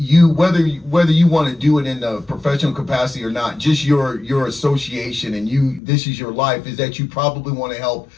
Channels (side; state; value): right; drops out; at 5.8 s